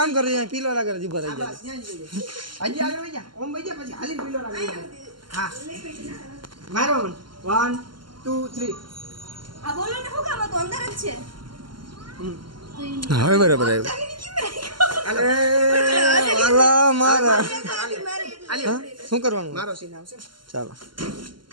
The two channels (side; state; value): left; late; 0.72 ms